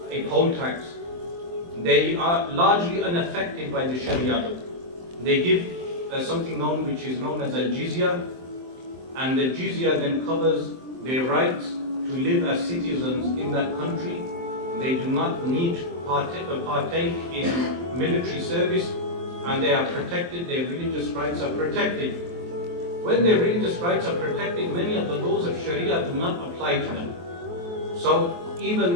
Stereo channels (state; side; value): late; left; 23 ms